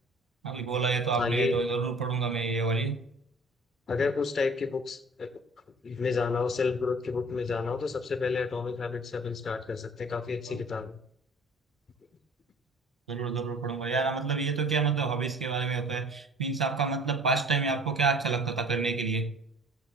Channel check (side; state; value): both; normal; correlation 0.49